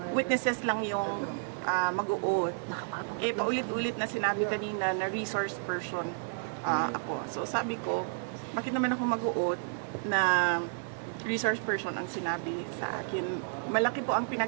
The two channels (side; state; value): left; silent; 57 dB below the other